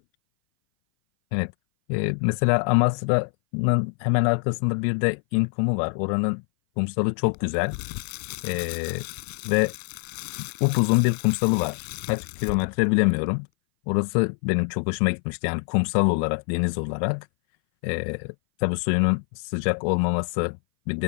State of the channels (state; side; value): silent; right; 58 dB below the other